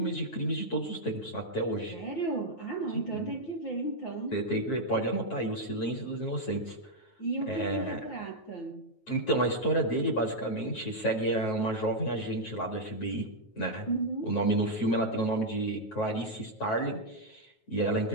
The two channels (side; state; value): right; late; 9.3 ms